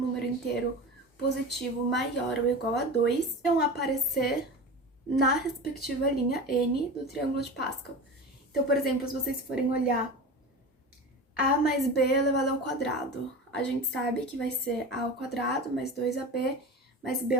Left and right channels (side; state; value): both; normal; correlation 0.30